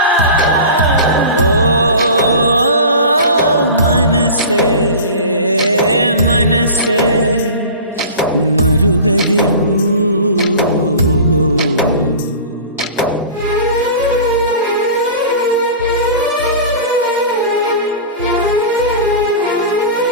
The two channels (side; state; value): both; inverted; correlation -0.36